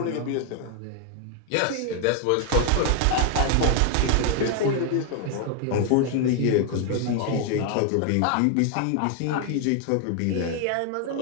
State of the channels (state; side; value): different; both; correlation 0.00